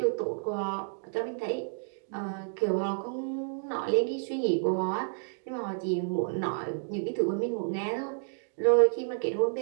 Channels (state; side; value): silent; left; digital silence